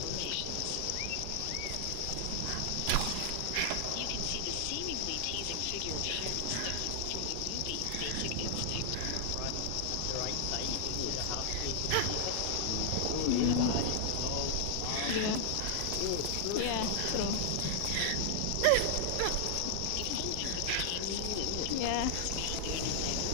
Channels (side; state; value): both; different; correlation 0.00